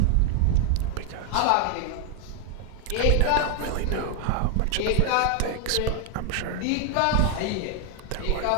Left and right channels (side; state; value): both; different; correlation 0.00